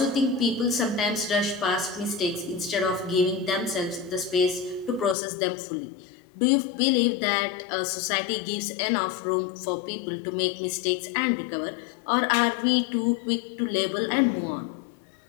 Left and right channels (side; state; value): right; drops out; at 5.2 s